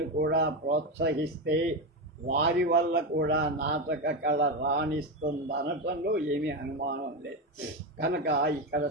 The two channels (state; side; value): normal; both; correlation 0.13